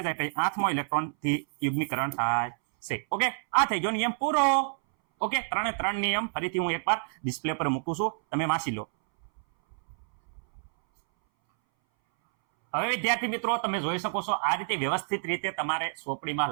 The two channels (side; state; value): left; silent; 59 dB below the other